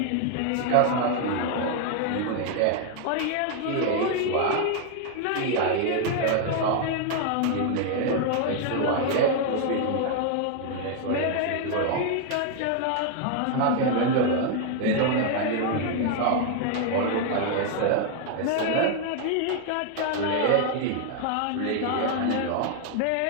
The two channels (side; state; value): both; different; correlation 0.00